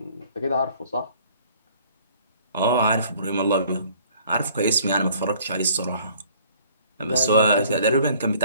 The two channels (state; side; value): inverted; both; correlation -0.56